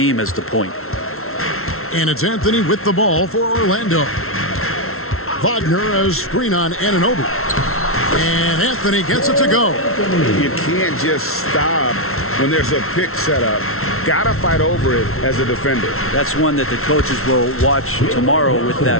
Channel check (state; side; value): late; right; 0.62 ms